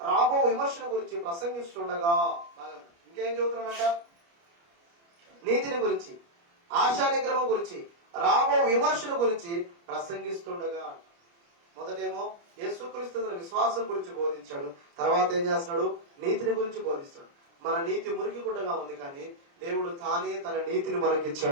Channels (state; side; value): late; left; 29 ms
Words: రాబో విమర్శన గురించి ప్రసంగిస్తుండగా, ఇంకేం చెబుతున్నాడంట? నీతిని గురించి, ఆశా నిగ్రహం గురించి, రాబో విమర్శన గురించి ప్రసంగిస్తుండగా. మొదటేమో యేసుక్రీస్తు విశ్వాసం గురించి బోధించాడు. తర్వాత ఏం చేస్తున్నాడు? నీతిని గురించి బోధిస్తాడు. మన నీతి మురికి గుడ్డగా ఉంది, కానీ దేవుడు తానే తన నీతిని